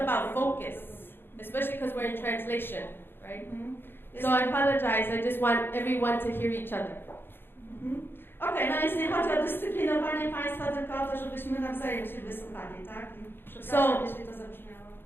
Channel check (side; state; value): right; late; 0.10 ms